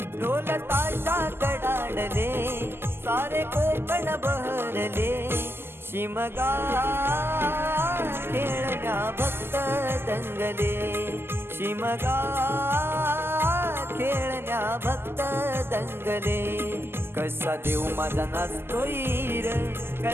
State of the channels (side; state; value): left; late; 0.11 ms